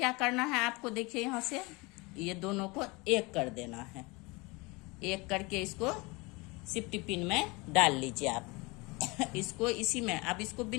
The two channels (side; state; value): right; quieter; 25.7 dB